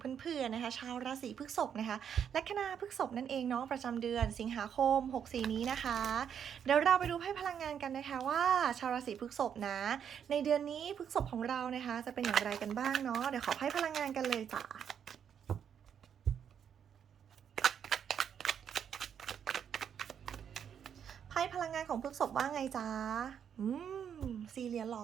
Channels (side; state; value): left; quieter; 8.3 dB